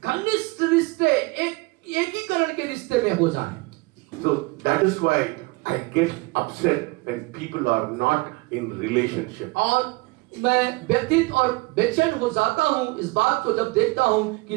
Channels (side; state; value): left; quieter; 24.5 dB